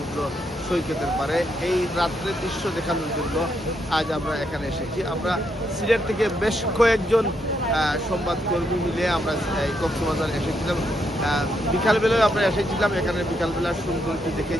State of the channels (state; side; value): normal; both; correlation 0.78